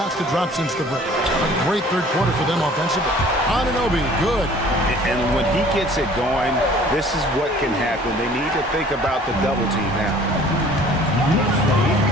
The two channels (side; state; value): both; normal; correlation 0.51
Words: to drop since the break. A great 3rd quarter for them offensively. Anunoby, good. And when he gets it going, this is what can happen. They need to think about the double team now.